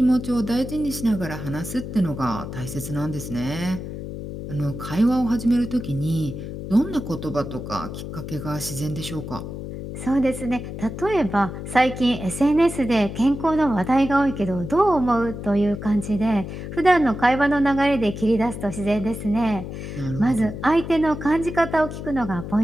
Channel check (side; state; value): left; noise; hum, 8 dB below the sound